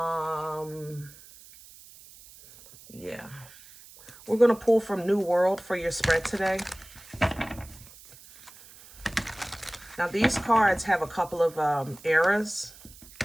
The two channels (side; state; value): right; noise; hiss, 21 dB below the sound